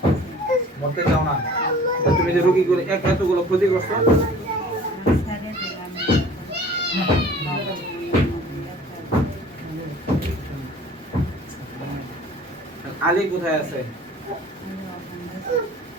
মরতে চাও না? তুমি যে রোগী করে এতগুলো ক্ষতি করছো, আলী কোথায় আছে?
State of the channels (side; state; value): both; normal; correlation 0.48